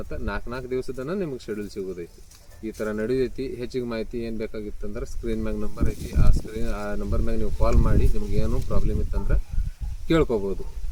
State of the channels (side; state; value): both; identical; correlation 1.00